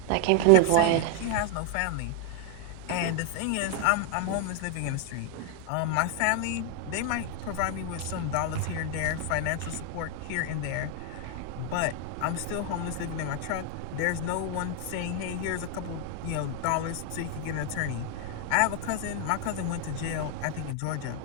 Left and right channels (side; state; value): both; different; correlation 0.00